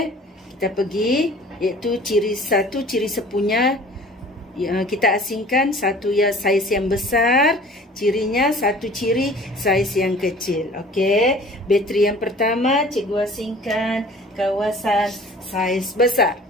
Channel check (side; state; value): both; normal; correlation 0.47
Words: kita pergi, iaitu ciri sepunya kita asingkan. Satu ya saiz yang besar, cirinya satu ciri saiz yang kecil. Okey, bateri yang pertama cikgu asingkan kawasan saiz besar.